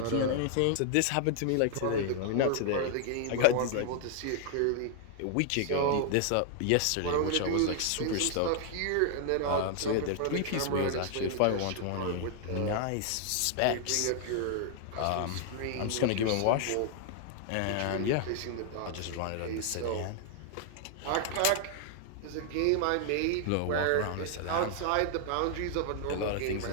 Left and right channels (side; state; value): both; different; correlation 0.00